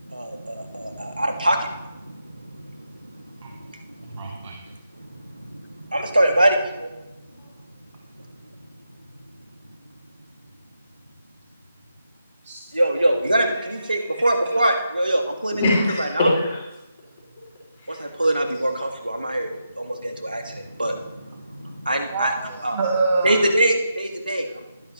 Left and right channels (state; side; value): inverted; both; correlation -0.84